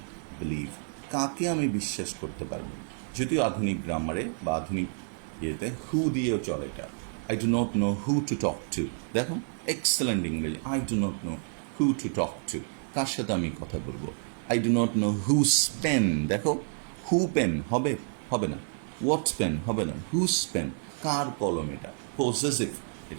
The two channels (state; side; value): silent; left; 58 dB below the other